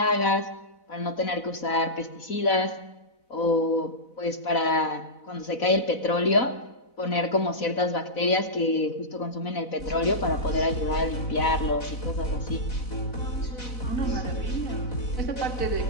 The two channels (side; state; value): right; late; 4.0 ms